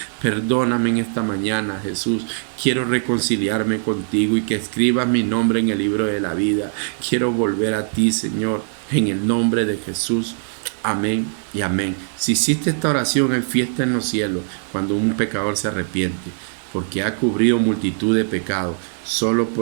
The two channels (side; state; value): left; silent; 65 dB below the other